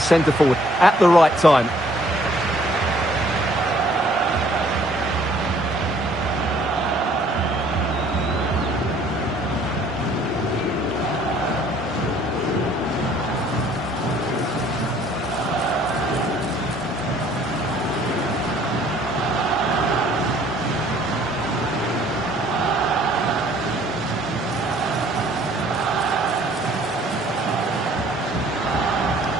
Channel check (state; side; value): normal; both; correlation 0.59